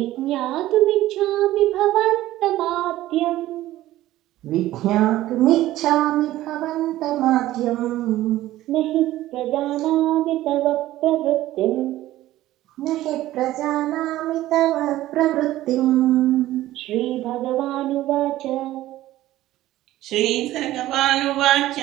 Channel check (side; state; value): left; quieter; 15.1 dB